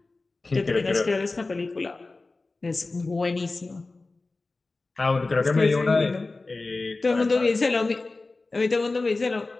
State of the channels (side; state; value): right; quieter; 3.4 dB